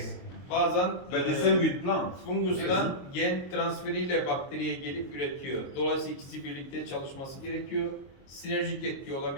Bazen But the same with plants. fungustan gen transferiyle bakteriye gelip üretiyor. Dolayısıyla ikisi birlikte çalışması gerekiyor. Sinerjik etki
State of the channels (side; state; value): right; late; 22 ms